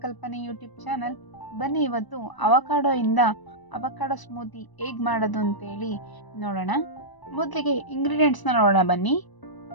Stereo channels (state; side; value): late; right; 1.0 ms